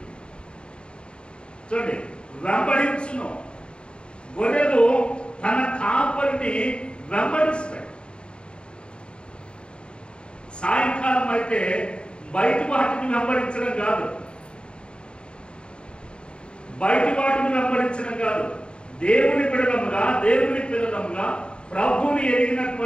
చూడండి, వెంబడించును. గొర్రెలు తన కాపరిని వెంబడిస్తాయి. సాయంకాలం అయితే బయట వాటిని వెంబడించడం కాదు, దేవుని పిల్లలముగా ప్రభువుని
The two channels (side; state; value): right; late; 0.053 ms